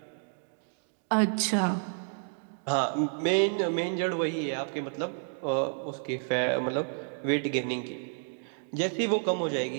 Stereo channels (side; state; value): left; silent; digital silence